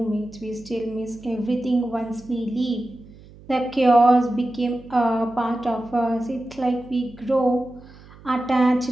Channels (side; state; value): right; noise; hum, 22 dB below the sound